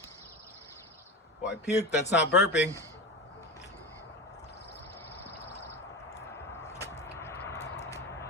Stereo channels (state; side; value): normal; both; correlation 0.24